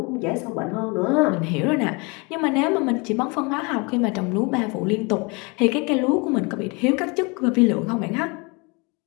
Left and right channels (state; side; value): quieter; right; 29.2 dB